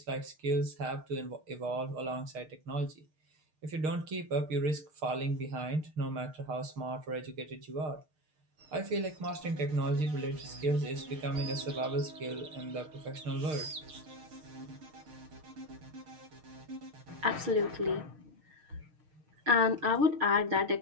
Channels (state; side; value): late; left; 6.5 ms